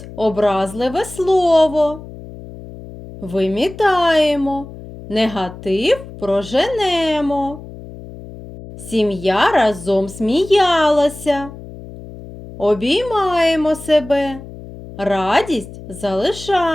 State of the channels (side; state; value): left; noise; hum, 15 dB below the sound